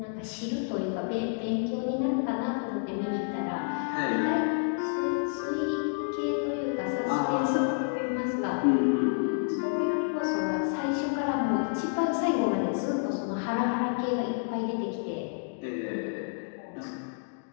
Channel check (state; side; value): silent; right; digital silence